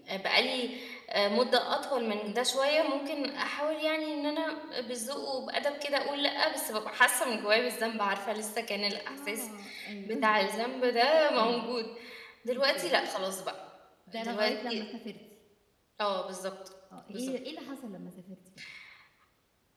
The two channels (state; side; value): identical; both; correlation 1.00